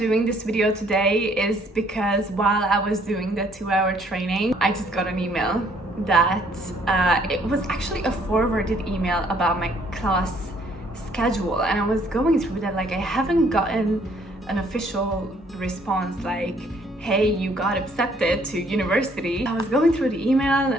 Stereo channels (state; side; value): normal; both; correlation 0.64